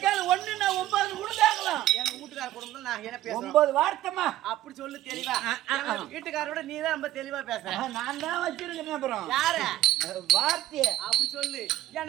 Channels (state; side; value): quieter; left; 14.4 dB